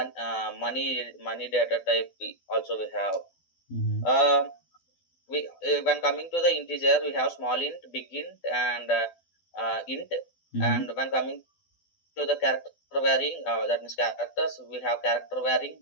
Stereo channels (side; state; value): right; late; 12 ms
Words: money data type. Also we have. Mm-hmm. Uh, we When coming to the integer, we have small int, big int, and int. Mm-hmm. And when coming to the character varying, that means characters, we have character varying,